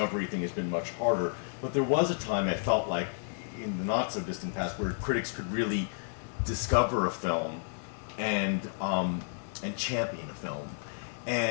thing has been much harder. But there was a time I felt like in the not so distant past where critics could really discover a film and champion a film.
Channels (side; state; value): right; silent; digital silence